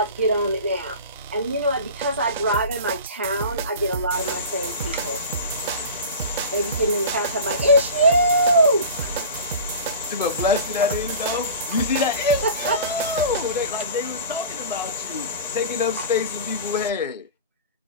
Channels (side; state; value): both; inverted; correlation -0.36